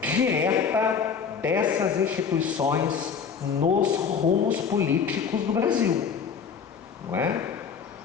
direta dessas instituições nos rumos políticos do Brasil, não é?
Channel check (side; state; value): right; quieter; 6.4 dB